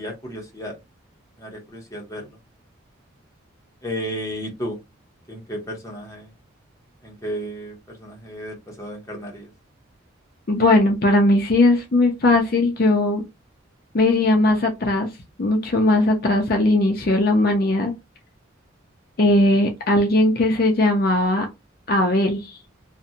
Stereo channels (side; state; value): both; normal; correlation 0.54